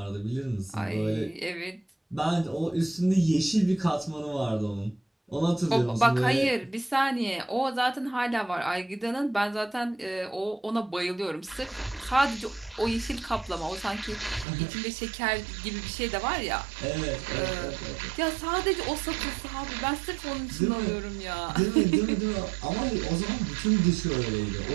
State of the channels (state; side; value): drops out; left; at 14.5 s